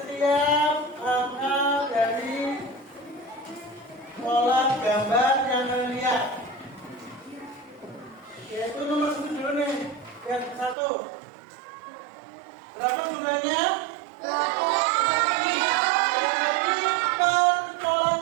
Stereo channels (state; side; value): drops out; left; at 10.8 s